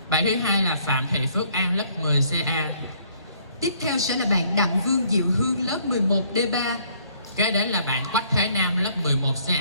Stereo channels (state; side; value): inverted; both; correlation -0.63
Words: Bạn thứ hai là Phạm Thị Phước An, lớp 10 CA. Tiếp theo sẽ là bạn Đặng Vương Diệu Hương, lớp 11 D3. Kế đến là bạn Quách Thế Nam, lớp 11